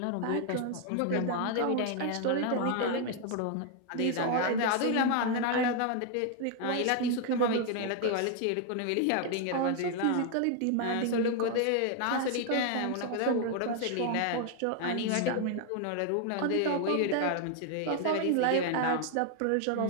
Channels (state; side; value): different; both; correlation 0.00